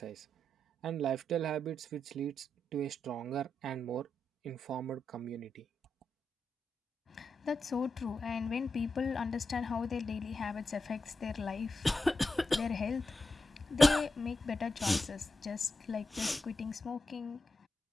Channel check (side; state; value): both; normal; correlation 0.87